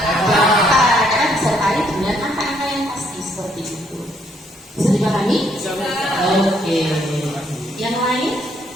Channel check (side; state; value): both; normal; correlation 0.70